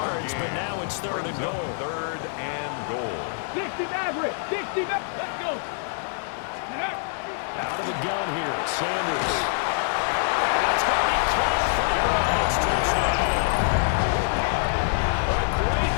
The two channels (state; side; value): silent; right; 61 dB below the other